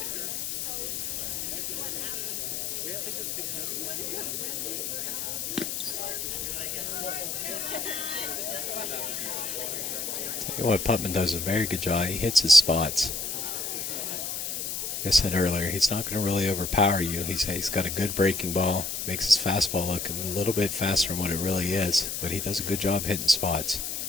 Tell you what, Putman does a very good job. He hits his spots. Like I said earlier, he's not going to really overpower you. He's got a good breaking ball, makes his fastball look a little bit faster than what it really is, but he does a good job hitting spots.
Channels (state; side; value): noise; left; hiss, 3 dB below the sound